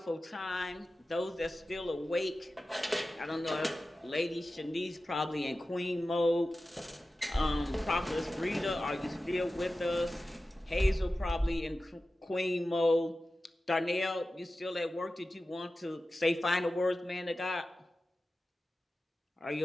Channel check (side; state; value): both; normal; correlation 0.94